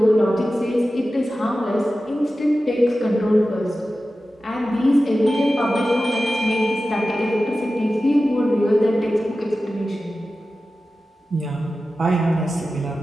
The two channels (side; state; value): both; normal; correlation 0.94